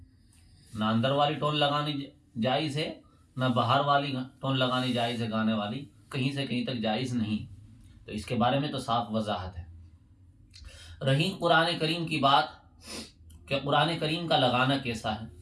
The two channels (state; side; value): identical; both; correlation 1.00